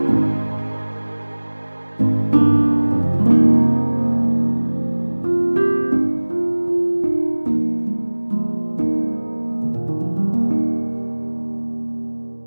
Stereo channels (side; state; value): both; inverted; correlation -1.00